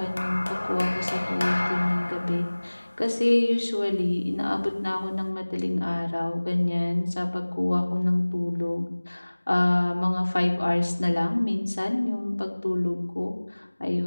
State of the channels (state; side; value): inverted; both; correlation -1.00